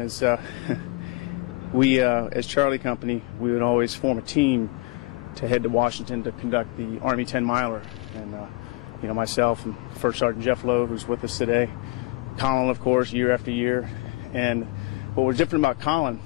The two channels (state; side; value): quieter; right; 23.6 dB